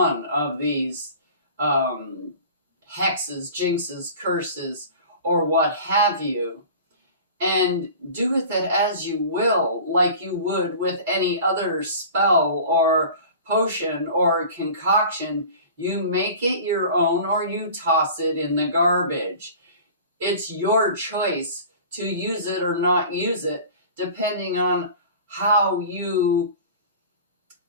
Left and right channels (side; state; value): both; inverted; correlation -0.40